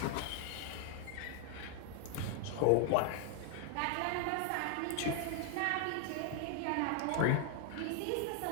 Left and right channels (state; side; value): different; both; correlation 0.00